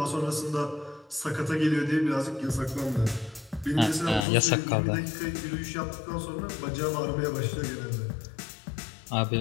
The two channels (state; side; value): drops out; right; at 4.2 s